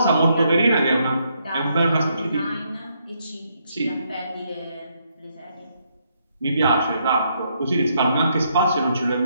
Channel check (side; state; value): both; inverted; correlation -0.75